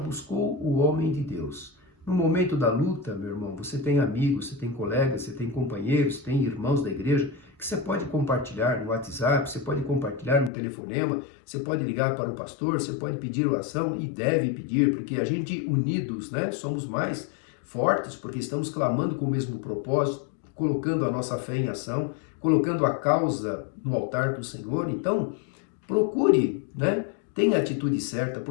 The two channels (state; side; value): drops out; right; at 10.5 s